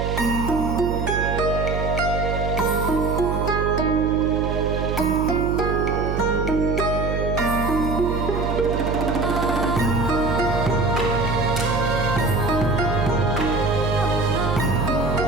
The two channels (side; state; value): right; noise; hum, 2 dB below the sound